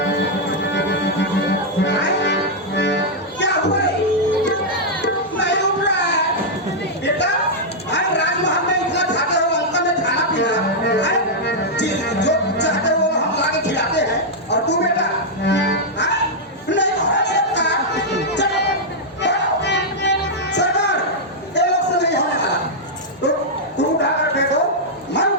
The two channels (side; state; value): both; normal; correlation -0.05